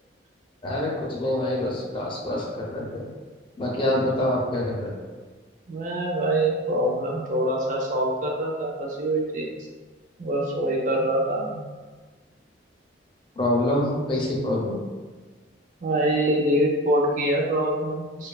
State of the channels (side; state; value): both; normal; correlation 0.28